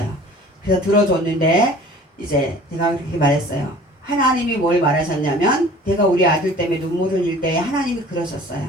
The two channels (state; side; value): normal; both; correlation 0.46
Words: 그래서 들어줬는데 이제 제가 그렇게 말했어요. 하나님이 뭘 말하셨냐면 내가 우리 아들 때문에 눈물 흘릴 때 하나님이 그러셨어요.